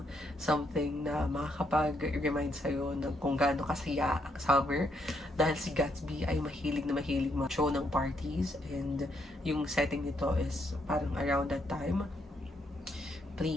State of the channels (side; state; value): both; normal; correlation 0.75